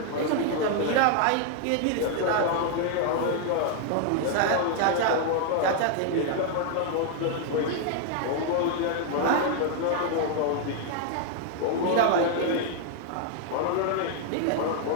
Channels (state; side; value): different; both; correlation 0.00